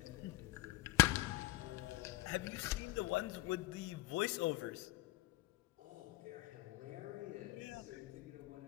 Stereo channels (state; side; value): quieter; right; 17.8 dB